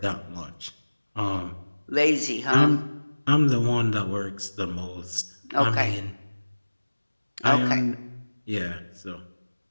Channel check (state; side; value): inverted; both; correlation -1.00